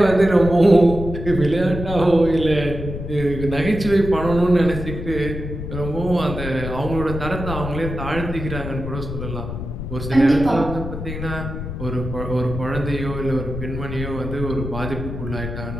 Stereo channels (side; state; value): left; noise; rumble, 7 dB below the sound